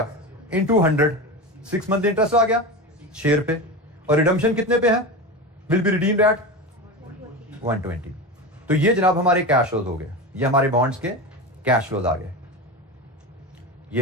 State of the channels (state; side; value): normal; both; correlation 0.24